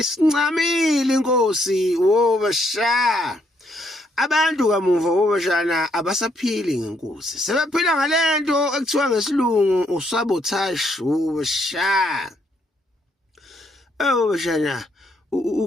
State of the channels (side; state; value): both; normal; correlation 0.72